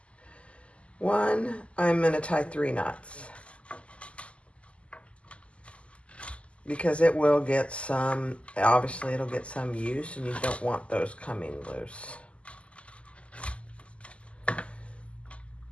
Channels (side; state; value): right; late; 0.058 ms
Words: one, I'm going to tie 3 knots. Because it will get some, obviously it'll get some use, and you don't want those coming loose.